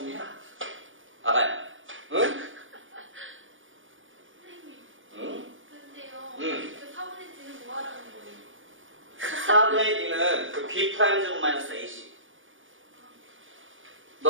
해라. 아가야, 응? 선생님. 응? 근데요. 응. 그 4분의 D는 뭐 하라는 거예요? 4분의 D는 그 B 프라임 제곱 마이너스 AC.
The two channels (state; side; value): late; left; 0.57 ms